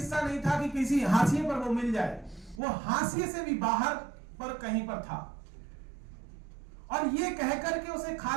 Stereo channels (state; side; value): drops out; left; at 2.6 s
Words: नहीं था कि किसी हाशिए पर वो मिल जाए, वो हाशिए से भी बाहर पर कहीं पर था। और ये कहकर के उसे